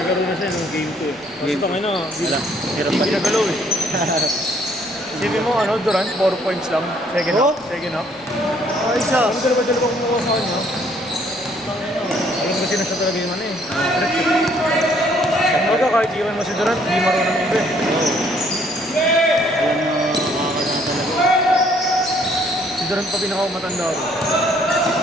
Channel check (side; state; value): left; noise; rumble, 29 dB below the sound